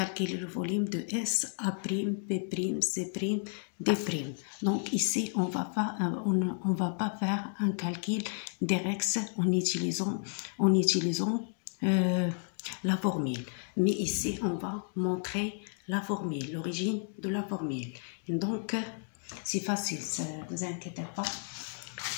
le volume de S, A', B', C', D'. Donc ici, on va pas faire un calcul direct en utilisant la formule. Mais ici, on va montrer la formule, l'origine de la formule. Donc, c'est facile, ne vous inquiétez pas.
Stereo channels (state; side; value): silent; right; 56 dB below the other